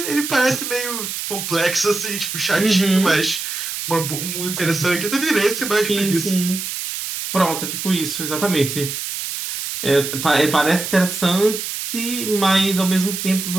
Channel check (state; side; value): noise; right; hiss, 5 dB below the sound